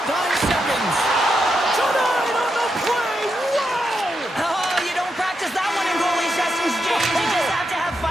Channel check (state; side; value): normal; both; correlation 0.84